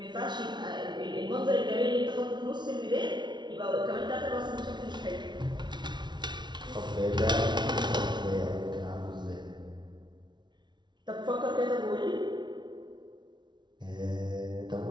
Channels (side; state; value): left; late; 0.21 ms